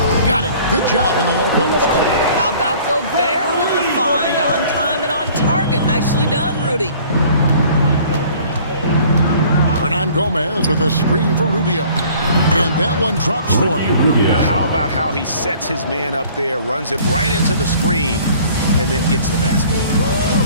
Got it. Good job in the low post. How about Gobert with the find? On time and on target. Nicely done, Rudy. Hernan Gomez with a screen for Rubio. And that one drops for him. How about how he sets his man up there, runs it right into the screen, and then gets the basket.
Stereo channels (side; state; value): both; inverted; correlation -0.52